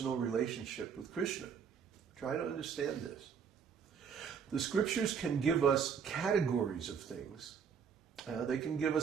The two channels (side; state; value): left; quieter; 6.8 dB